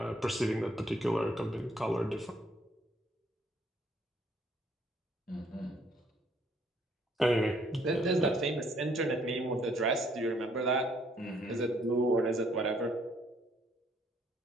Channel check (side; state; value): both; normal; correlation 0.66